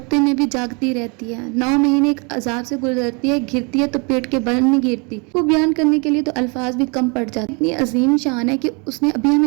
میں بھی جاگتی رہتی ہے۔ 9 مہینے ایک عذاب سے گزرتی ہے، گرتی ہے تو پیٹ کے بل نہیں گرتی۔ وہ بیان کرنے کے لیے تو الفاظ بھی کم پڑ جاتے۔ اتنی عظیم شان ہے کہ اس نے ابھی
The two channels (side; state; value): left; quieter; 32.1 dB